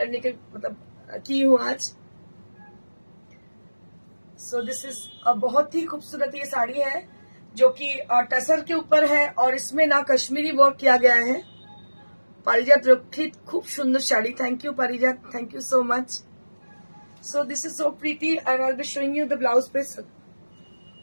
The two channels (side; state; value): both; inverted; correlation -1.00